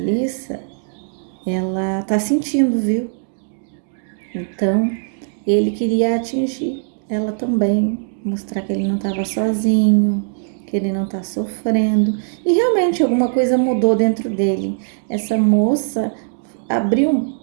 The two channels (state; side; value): silent; left; digital silence